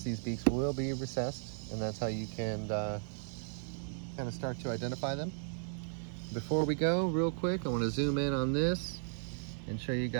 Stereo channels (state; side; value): silent; left; digital silence